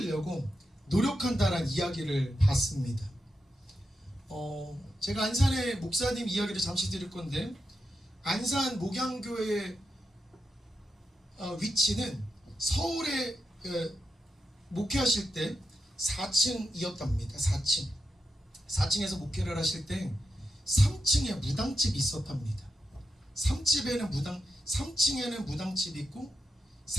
노력한다라는 이야기를 봤습니다. 제가 안산의 목사님 이야기를 잠시 드릴 건데, 안산 목양교회의 위치는 서울에 목회하실 때 4층이었답니다. 4층. 4층에서 목회를 하실 때 3층에 무당집이 있었답니다. 3층에는 무당집이 있고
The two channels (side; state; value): both; normal; correlation 0.87